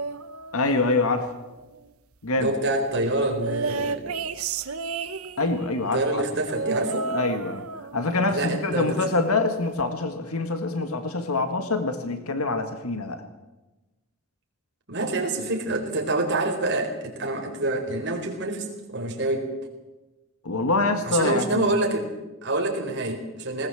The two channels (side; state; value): both; normal; correlation -0.12